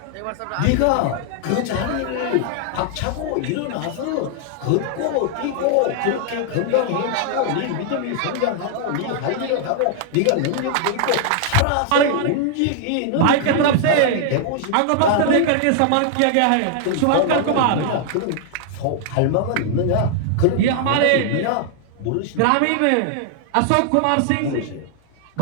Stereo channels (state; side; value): different; both; correlation 0.00